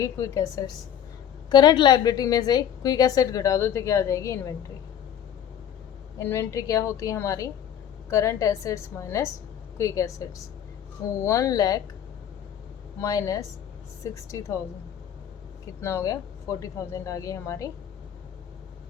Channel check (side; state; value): right; quieter; 9.4 dB